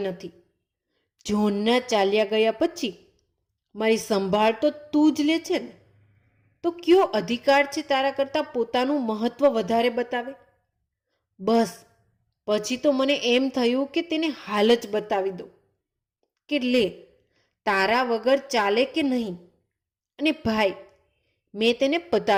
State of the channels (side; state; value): both; identical; correlation 1.00